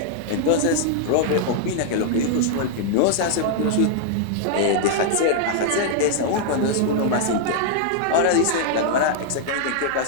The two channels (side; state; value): both; different; correlation -0.01